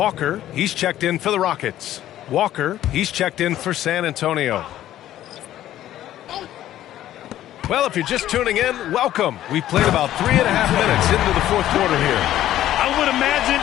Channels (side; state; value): right; quieter; 12.9 dB